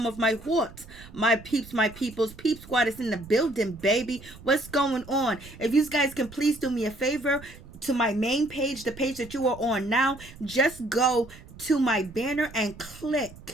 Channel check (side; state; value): right; noise; rumble, 19 dB below the sound